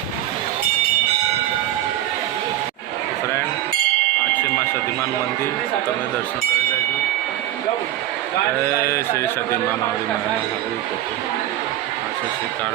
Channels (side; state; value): left; quieter; 13.5 dB